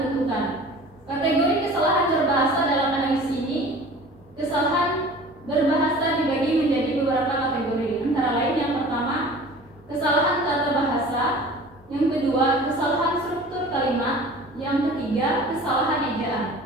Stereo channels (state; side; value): normal; both; correlation 0.43